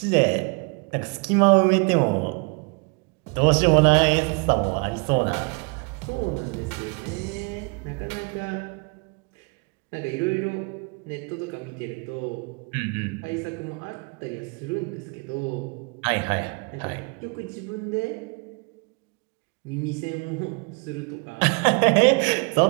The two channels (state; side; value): quieter; left; 32.4 dB